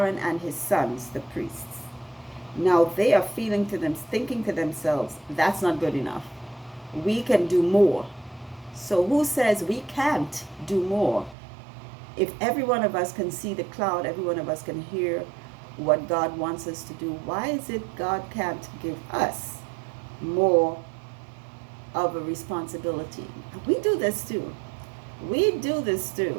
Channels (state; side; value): drops out; left; at 11.4 s